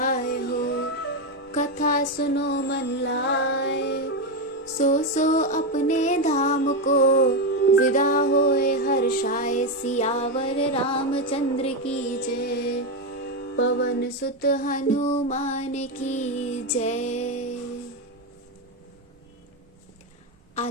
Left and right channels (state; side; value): normal; both; correlation 0.09